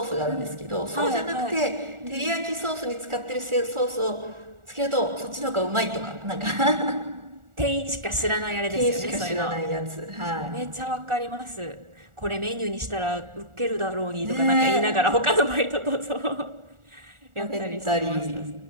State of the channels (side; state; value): left; late; 1.4 ms